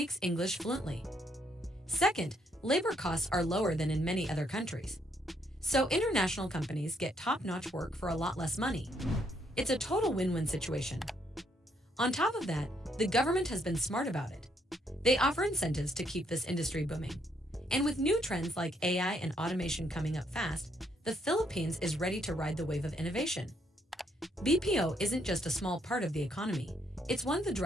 English fluently. Second, labor costs are lower than in many other countries. So international companies get top-notch work for a lot less money. It's a total win-win situation. On top of that, the government has been smart about it. They offer incentives to keep this industry booming. And with new trends like AI and automation coming up fast, the Philippines is ready to ride the wave of innovation. BPO isn't just a small part of the economy, it's one of the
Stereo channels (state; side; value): normal; both; correlation 0.72